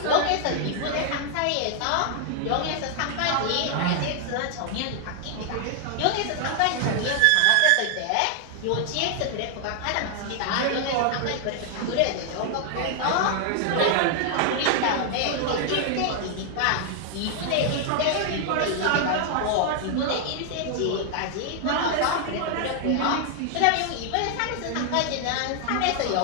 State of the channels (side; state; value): both; different; correlation 0.00